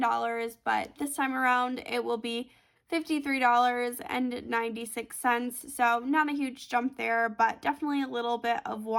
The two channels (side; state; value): both; identical; correlation 1.00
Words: but this time around it will be $53.96. So not a huge jump there, but definitely a little bit of